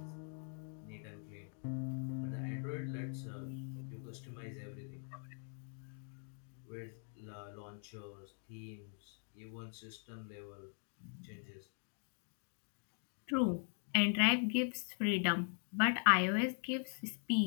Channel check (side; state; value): right; silent; 50 dB below the other